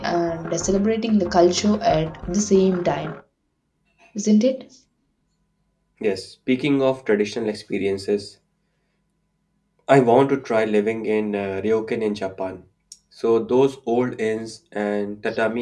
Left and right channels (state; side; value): identical; both; correlation 1.00